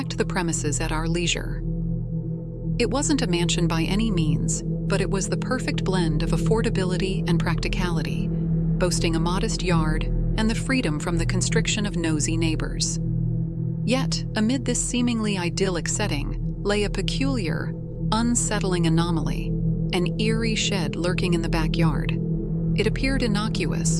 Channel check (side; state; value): both; identical; correlation 1.00